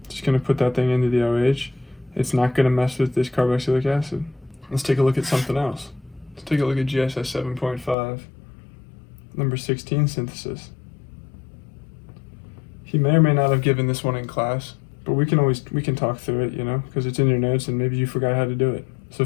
just going to put that thing into the OH. It's not going to mess with this carboxylic acid. Let's take a look at something else. Let's take a look at GSS 7.5, number 16 synthesis. He may or may not have given this one in class, but we can talk through it, you know, because it's in your notes and maybe you forgot how to do it. So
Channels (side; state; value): right; drops out; at 8.0 s